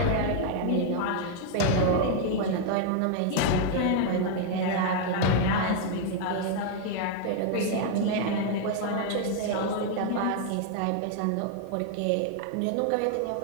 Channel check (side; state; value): both; different; correlation 0.00